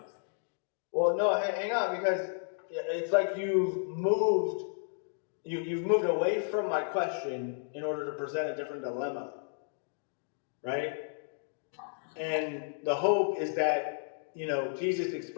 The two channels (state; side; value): silent; right; digital silence